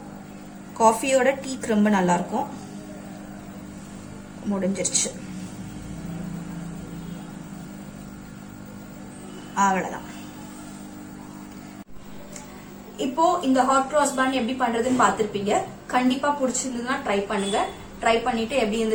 காஃபியோட டீக்கு ரொம்ப நல்லா இருக்கும். முடிஞ்சிருச்சு. அவ்வளவுதான். இப்போ இந்த ஹாட் கிராஸ் பன் எப்படி பண்றதுன்னு பாத்திருப்பீங்க. கண்டிப்பா பிடிச்சிருந்ததுன்னா ட்ரை பண்ணுங்க. ட்ரை பண்ணிட்டு எப்படி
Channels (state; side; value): identical; both; correlation 1.00